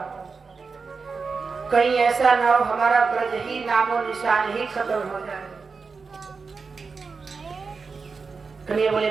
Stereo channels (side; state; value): left; quieter; 4.8 dB